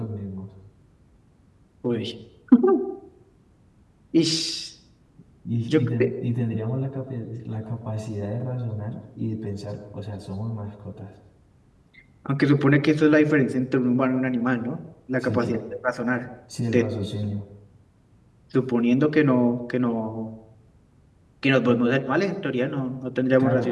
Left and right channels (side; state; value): both; identical; correlation 1.00